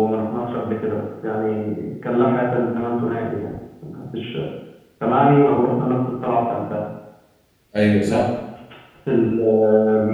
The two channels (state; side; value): identical; both; correlation 1.00